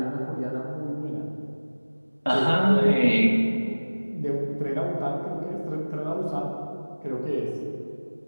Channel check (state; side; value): inverted; both; correlation -1.00